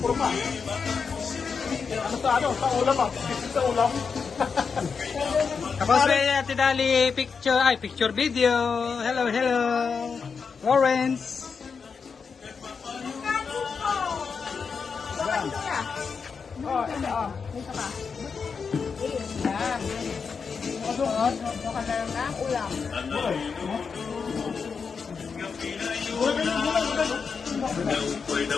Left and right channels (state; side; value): quieter; right; 5.6 dB